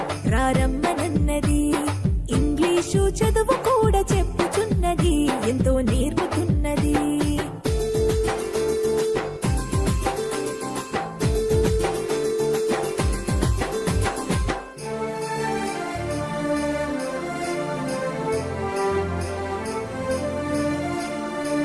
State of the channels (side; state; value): both; identical; correlation 1.00